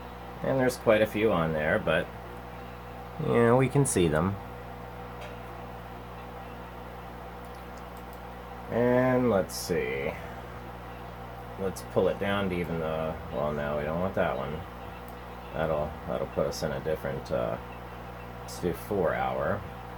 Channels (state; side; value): identical; both; correlation 1.00